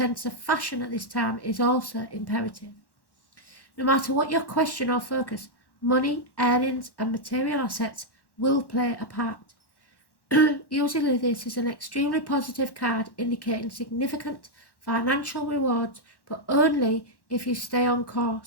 of fashion at this time is also imperative. No matter what your question or focus, money, earnings and material assets will play a part. Usually this is an extremely positive card indicating significant financial rewards, but only if you stay on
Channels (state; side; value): late; right; 1.1 ms